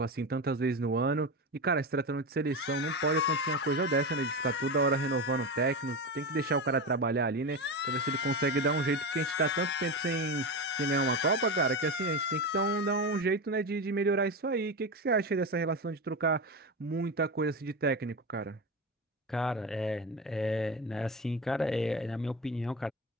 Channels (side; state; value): both; normal; correlation 0.20